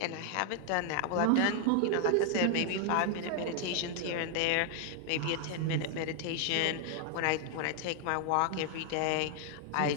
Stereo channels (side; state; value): both; different; correlation 0.00